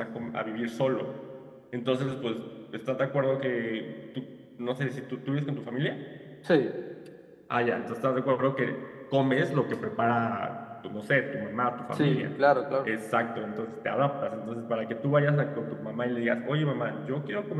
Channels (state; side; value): identical; both; correlation 1.00